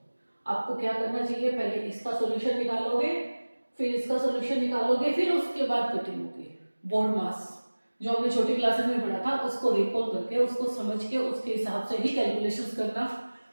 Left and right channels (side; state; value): both; inverted; correlation -1.00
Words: आपको क्या करना चाहिए, पहले इसका सॉल्यूशन निकालोगे, फिर इसका सॉल्यूशन निकालोगे, फिर उसके बाद कटिंग होगी। बोर्ड मास जो हमने छोटी क्लासेस में पढ़ा था उसको रिकॉल करके, उसको समझ के, उसके हिसाब से ही कैलकुलेशंस करना।